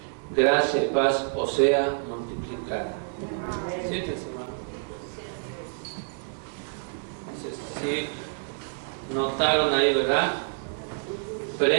Gracia y paz os sea multiplicada. Siéntense, hermano. Sí, notaron ahí, ¿verdad?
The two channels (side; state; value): left; silent; digital silence